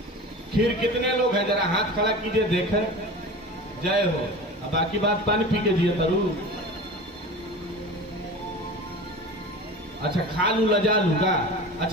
खीर कितने लोग हैं? जरा हाथ खड़ा कीजिए देखे। जय हो। अब बाकी बात पानी पी के जिए तरु। अच्छा खा लू लजा लू का?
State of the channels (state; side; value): normal; both; correlation 0.34